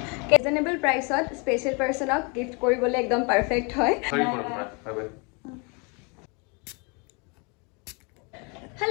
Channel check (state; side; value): quieter; right; 32.2 dB